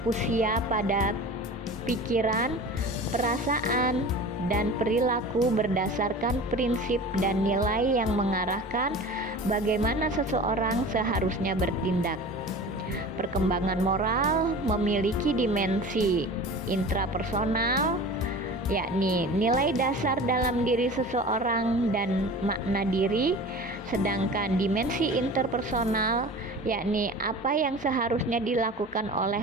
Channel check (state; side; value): normal; both; correlation 0.37